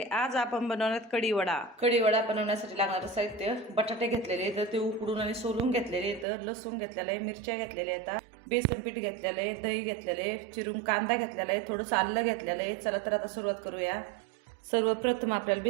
आज आपण बनवणार कढीवडा। कढीवडा बनवण्यासाठी लागणारं साहित्य: बटाटे घेतलेले तर ते उकडून आणि सोलून घेतलेले, तर लसूण घेतलेला आहे, मिरच्या घेतलेल्या आहेत, बेसन पीठ घेतलेलं आहे, दही घेतलेलं आहे, चिरून कांदा घेतलेला आहे, थोडंसं आलं घेतलेलं आहे। चला तर आता सुरुवात करूया। सर्वप्रथम आपल्याला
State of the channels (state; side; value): drops out; left; at 6.2 s